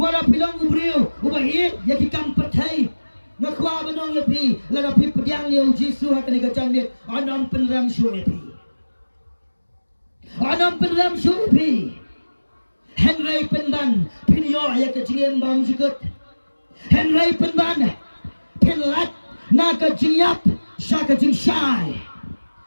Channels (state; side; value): inverted; both; correlation -1.00